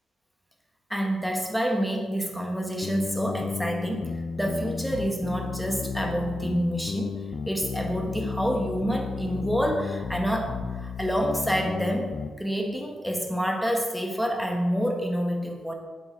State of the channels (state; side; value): normal; both; correlation 0.91